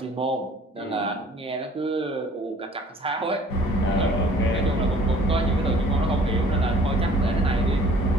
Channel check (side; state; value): both; normal; correlation 0.53